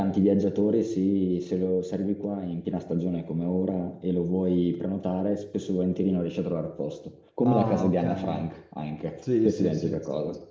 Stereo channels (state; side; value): identical; both; correlation 1.00